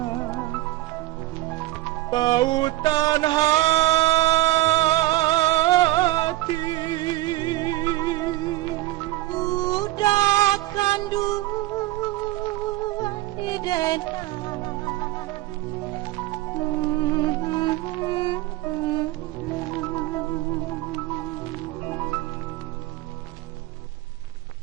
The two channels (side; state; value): left; quieter; 17.7 dB